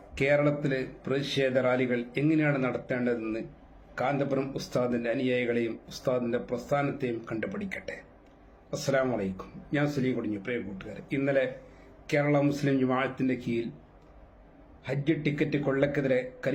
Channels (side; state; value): both; identical; correlation 1.00